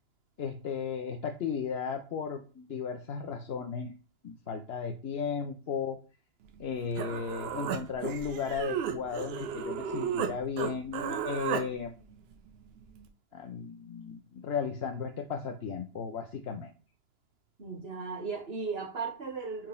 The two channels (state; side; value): late; left; 2.9 ms